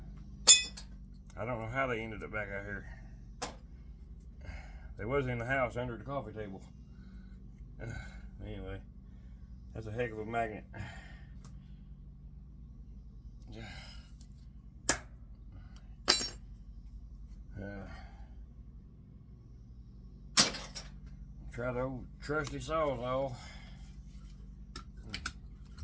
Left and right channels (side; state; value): both; identical; correlation 1.00